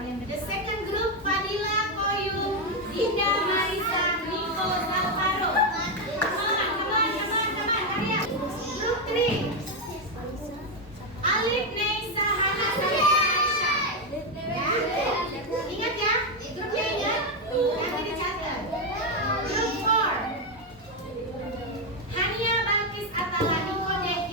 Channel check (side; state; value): both; normal; correlation 0.05